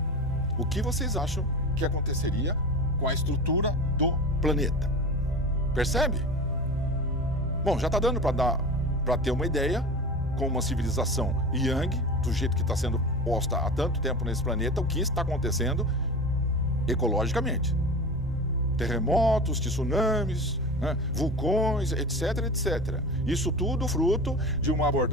O que vocês acham que aconteceria com a estrutura do planeta? Percebe? Bom, já está dando para ter uma ideia, com uma civilização yang, do jeito que está sendo posta há tanto tempo nesse planeta, o que está acontecendo ecologicamente. Terremotos, tsunamis, né, vulcões, etc. Isso tudo fruto de uma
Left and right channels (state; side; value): normal; both; correlation 0.30